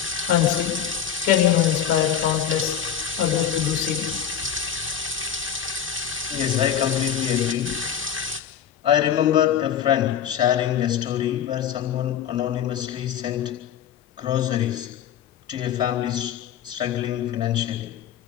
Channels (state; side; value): quieter; right; 9.1 dB